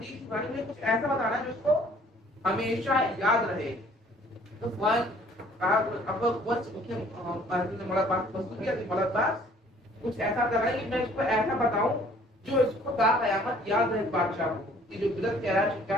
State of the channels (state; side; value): normal; both; correlation 0.56